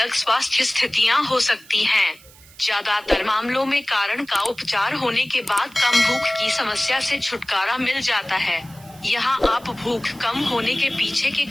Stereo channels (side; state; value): right; noise; hiss, 24 dB below the sound